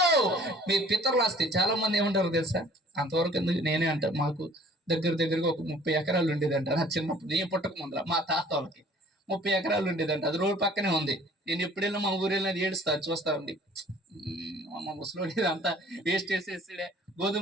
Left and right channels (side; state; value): both; normal; correlation 0.52